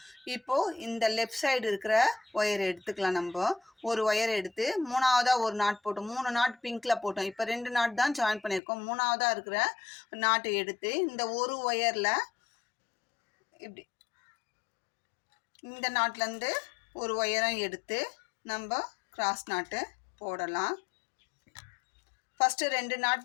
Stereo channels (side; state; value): right; drops out; at 8.6 s